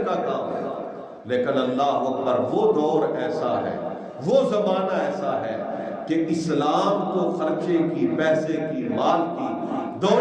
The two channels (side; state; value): both; identical; correlation 1.00